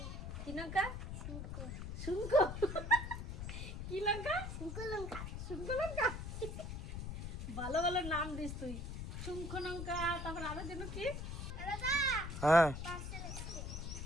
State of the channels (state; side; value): noise; left; rumble, 6 dB below the sound